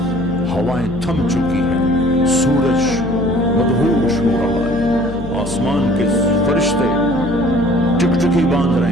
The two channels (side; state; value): left; noise; hum, 10 dB below the sound